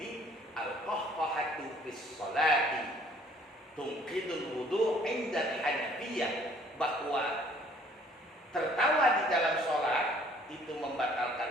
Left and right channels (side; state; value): both; normal; correlation 0.58